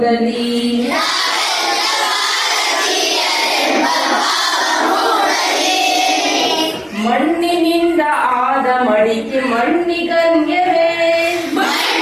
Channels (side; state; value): both; identical; correlation 1.00